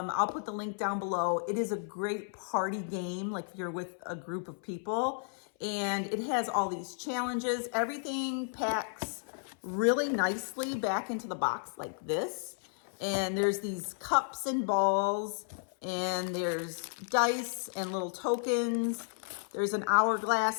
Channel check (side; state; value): right; silent; 55 dB below the other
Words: put the link down below. It is a great party game, like if you're with a group of people, and it has all these challenges. Everything packs really nicely back into the box like this. And there's these cups and balls, and there's dice and little tokens. There's an